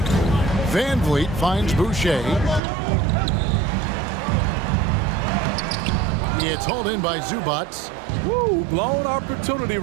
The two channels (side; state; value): left; drops out; at 2.6 s